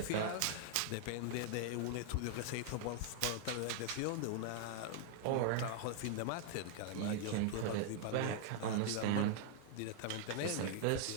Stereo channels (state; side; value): different; both; correlation 0.00